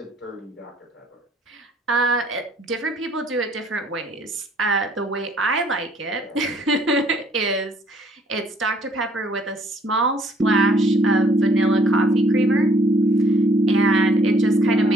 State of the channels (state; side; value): normal; both; correlation 0.62